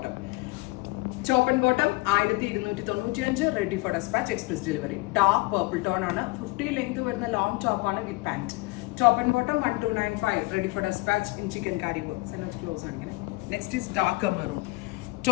Top and bottom 1295, ready for dispatch, express delivery. Dark purple tone ആണ്, 50 length വരുന്ന long top ആണ് with pant. Top and bottom 1295, ready for dispatch in chikankari work. Close ആണ് ഇങ്ങനെ. Next is dark maroon.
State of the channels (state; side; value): quieter; right; 23.7 dB